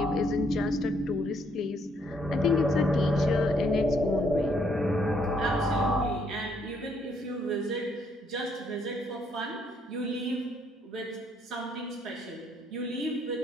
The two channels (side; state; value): both; normal; correlation 0.70